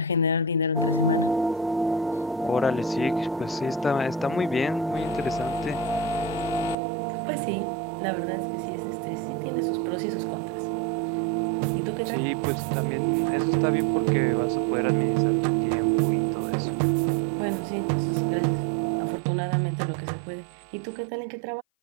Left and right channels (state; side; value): drops out; left; at 6.8 s